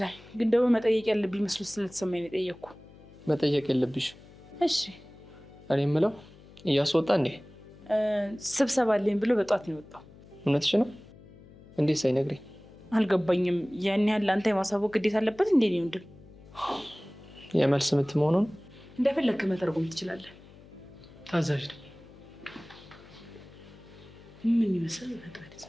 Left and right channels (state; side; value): noise; left; hum, 22 dB below the sound